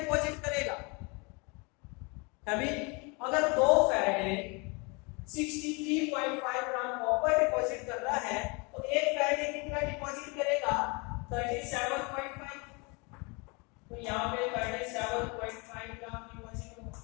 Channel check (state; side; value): quieter; right; 29.9 dB